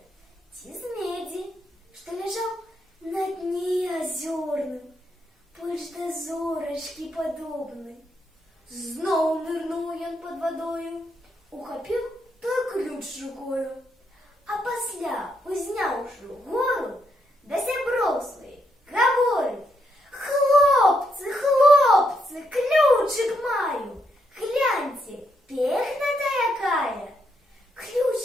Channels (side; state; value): both; normal; correlation 0.78